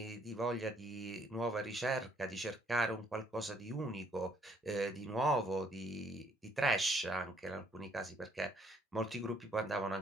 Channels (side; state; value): both; normal; correlation 0.67